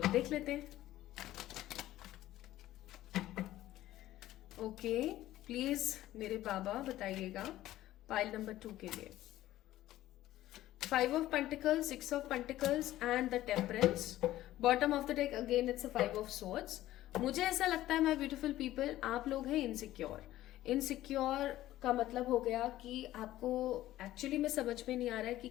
देख लेते हैं। ओके, प्लीज मेरे बाबा बताइएगा पाइल नंबर 2 के लिए। 5 of Pentacles, 6 of Pentacles and the Temperance. Bottom of the deck again it's a 5 of Swords. मुझे ऐसा लगता है माय ब्यूटीफुल पीपल, आप लोग हैं इनसिक्योर। इनसिक्योर का मतलब हो गया कि आपको एक्चुअली में समझ में नहीं आ रहा है कि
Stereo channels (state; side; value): quieter; right; 14.7 dB